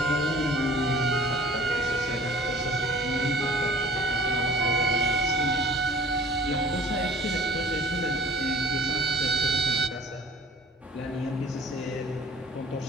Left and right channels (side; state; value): both; normal; correlation 0.48